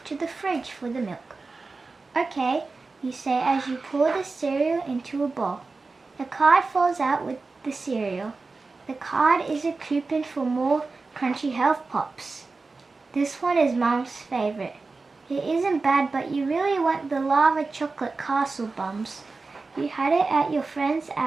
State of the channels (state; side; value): quieter; left; 3.9 dB